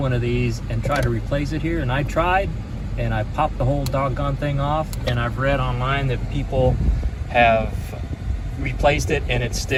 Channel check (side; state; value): both; identical; correlation 1.00